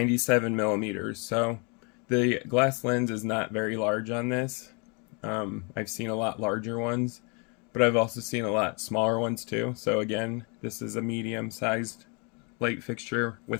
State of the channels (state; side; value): quieter; right; 33.8 dB